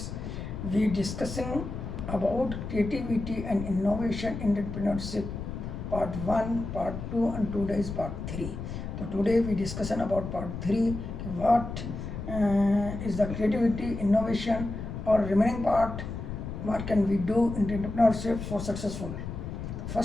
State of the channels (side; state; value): left; noise; rumble, 7 dB below the sound